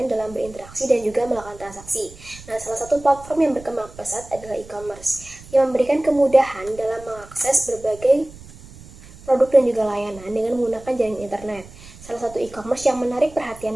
dalam berinteraksi dan juga melakukan transaksi. Nah, salah satu platform yang berkembang pesat adalah e-commerce, yang memberikan kemudahan dalam mengakses berbagai produk dan juga layanan dengan menggunakan jaringan internet. Salah satu e-commerce yang menarik perhatian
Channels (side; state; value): right; noise; rumble, 19 dB below the sound